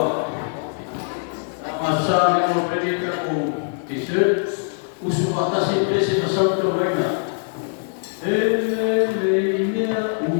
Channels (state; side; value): silent; right; 64 dB below the other